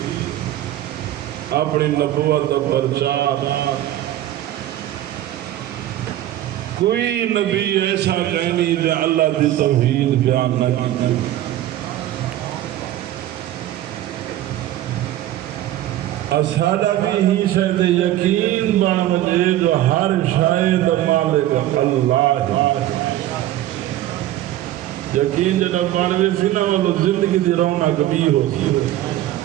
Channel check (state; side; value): quieter; left; 13.6 dB